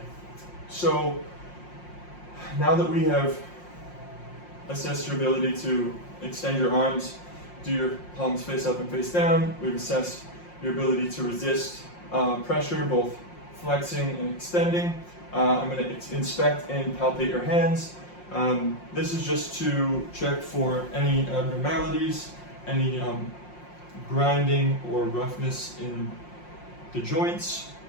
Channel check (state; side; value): late; right; 5.6 ms